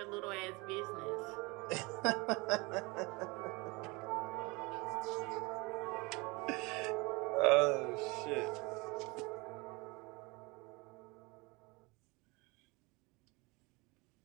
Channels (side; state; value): left; quieter; 25.8 dB